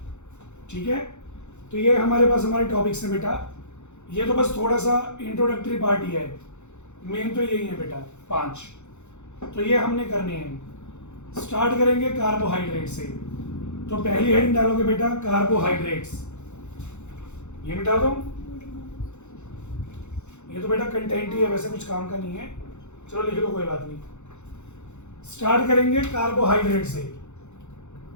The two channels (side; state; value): right; late; 0.83 ms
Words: ठीक है। तो ये हमारे पास हमारे टॉपिक्स हैं बेटा। ये तो बस थोड़ा सा इंट्रोडक्टरी पार्ट ही है, मेन तो यही है बेटा 5। तो ये हमने करने हैं। स्टार्ट करेंगे कार्बोहाइड्रेट से। तो पहली हेडिंग डालोगे बेटा कार्बोहाइड्रेट्स। ये मिटा दो, ये तो बेटा कंटेंट ही है, वैसे कुछ काम का नहीं है, चलो लिख लो, कोई बात नहीं। स्टार्ट करेंगे कार्बोहाइड्रेट से।